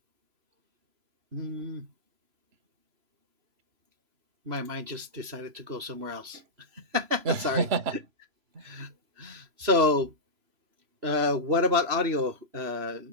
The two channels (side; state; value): left; late; 3.0 ms